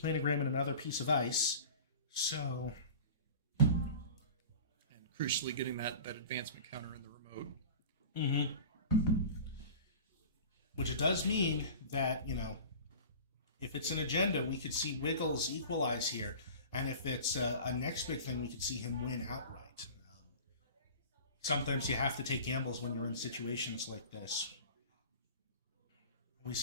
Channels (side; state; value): both; inverted; correlation -0.38